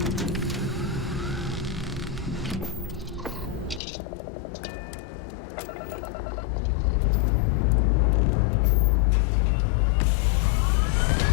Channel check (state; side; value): drops out; right; at 3.8 s